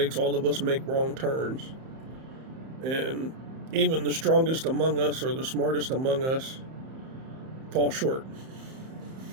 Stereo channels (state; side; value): late; left; 31 ms